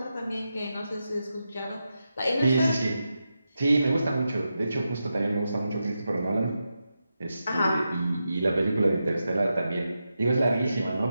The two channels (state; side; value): inverted; both; correlation -0.88